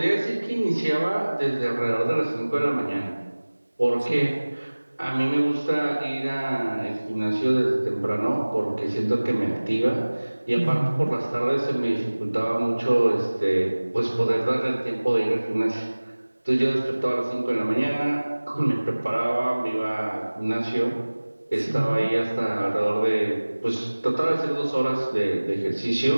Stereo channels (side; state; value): both; inverted; correlation -1.00